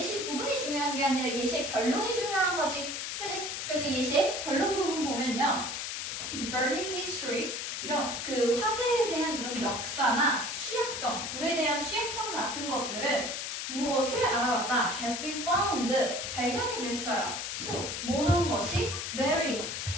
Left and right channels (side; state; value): left; noise; hiss, 4 dB below the sound